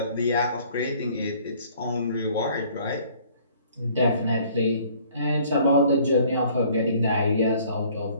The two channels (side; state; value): both; inverted; correlation -0.56